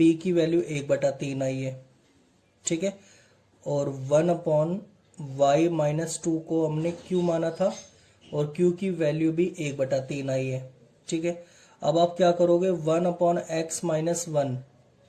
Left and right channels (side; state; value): both; identical; correlation 1.00